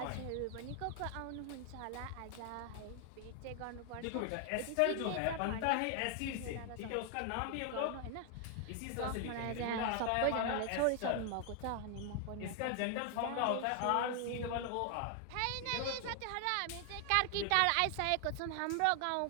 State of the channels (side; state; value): both; different; correlation 0.00